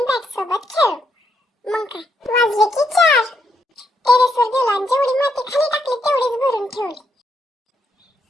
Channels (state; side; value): normal; both; correlation 0.77